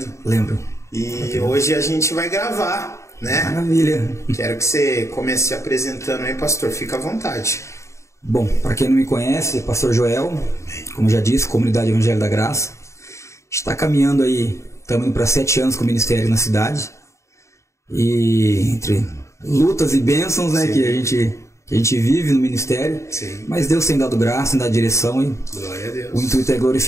Lembro. E hoje a gente vai gravar, né? Maravilha. Quero que você comece se apresentando aí, pastor. Fica à vontade. Bom, para quem não me conhece, pastor Joel, como já disse, Comunidade Evangelho da Graça. Está caminhando aí, estamos indo para 7 anos com o ministério na cidade. E entre lutas e bênçãos, né, que a gente vive no ministério. Sim. Mas Deus tem dado graça, tem dado direção e Glória a Deus. o intuito é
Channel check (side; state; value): right; late; 0.14 ms